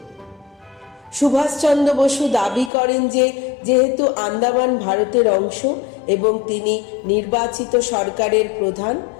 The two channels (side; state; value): right; drops out; at 2.7 s